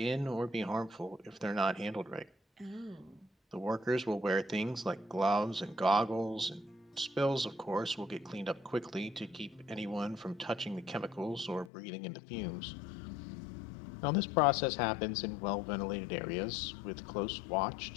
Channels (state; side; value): drops out; right; at 11.7 s